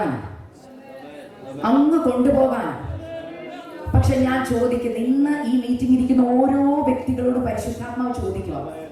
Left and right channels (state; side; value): identical; both; correlation 1.00